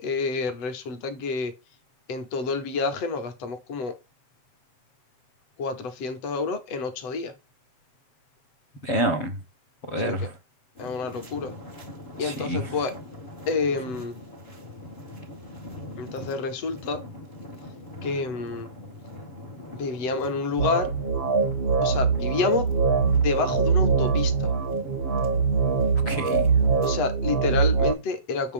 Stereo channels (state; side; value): late; right; 7.9 ms